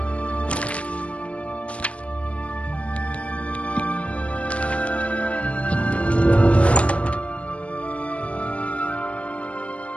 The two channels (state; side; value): late; right; 0.063 ms